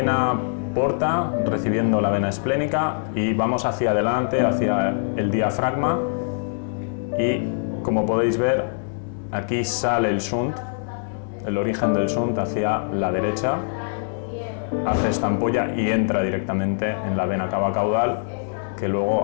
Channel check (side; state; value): right; silent; digital silence